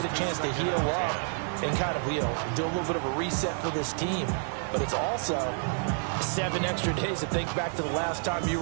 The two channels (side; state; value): left; silent; 59 dB below the other